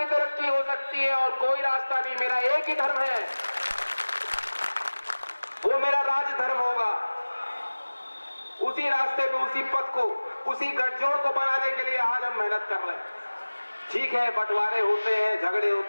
तरक्की हो सकती है, और कोई रास्ता नहीं। मेरा एक ही धर्म है, वो मेरा राज धर्म होगा। उसी रास्ते पे, उसी पथ को, उसी गठजोड़ को बनाने के लिए आज हम मेहनत कर रहे हैं। ठीक है, बंटवारे होते हैं, झगड़े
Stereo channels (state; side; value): inverted; both; correlation -1.00